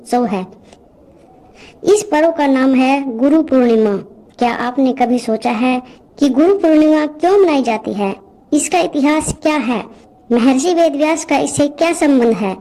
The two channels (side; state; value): both; identical; correlation 1.00